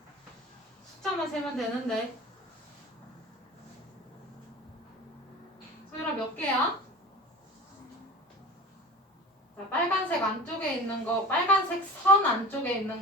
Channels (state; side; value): normal; both; correlation 0.37